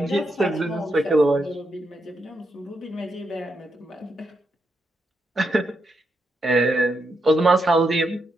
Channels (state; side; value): normal; both; correlation 0.82